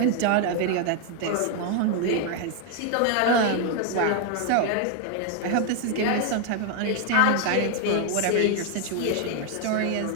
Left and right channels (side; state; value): both; different; correlation 0.01